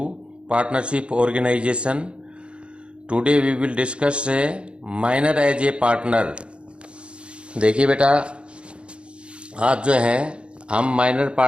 Partnership Organization. Today we will discuss a minor as a partner. देखिए बेटा, आज जो है हम minor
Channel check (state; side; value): late; left; 0.057 ms